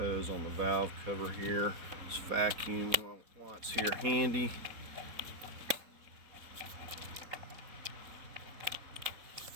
on the valve cover here. This vacuum while it's here handy.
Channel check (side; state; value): left; late; 4.2 ms